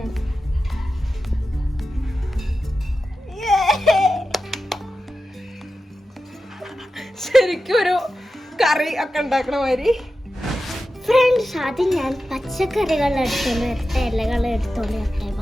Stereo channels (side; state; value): both; normal; correlation 0.92